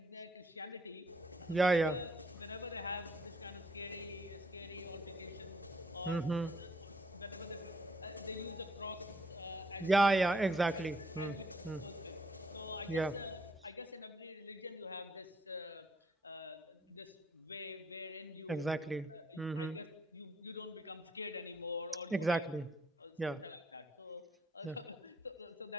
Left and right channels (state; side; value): normal; both; correlation 0.70